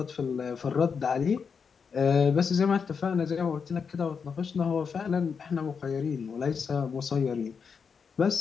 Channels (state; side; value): quieter; right; 6.0 dB